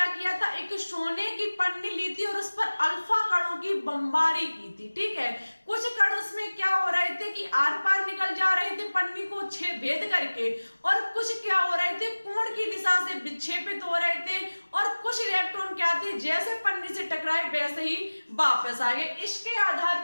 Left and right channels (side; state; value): both; inverted; correlation -1.00